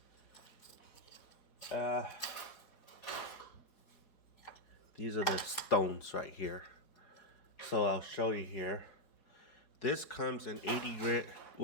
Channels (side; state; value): right; late; 4.4 ms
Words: these are the stones right here. So I'll show you here. This comes in 80 grit,